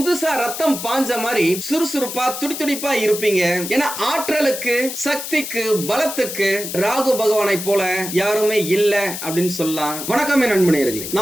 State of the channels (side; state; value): left; noise; hiss, 7 dB below the sound